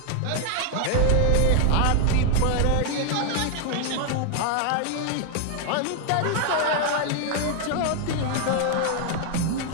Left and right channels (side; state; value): both; different; correlation 0.01